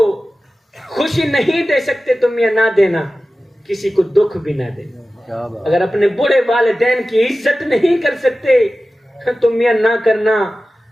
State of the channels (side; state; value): both; normal; correlation 0.95